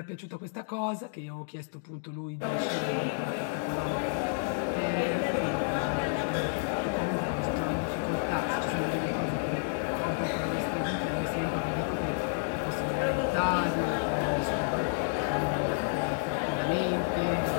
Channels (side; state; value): right; silent; digital silence